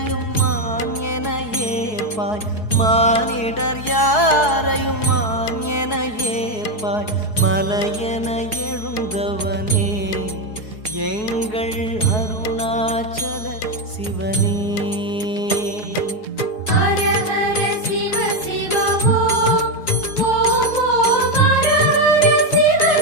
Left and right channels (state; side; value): late; right; 4.7 ms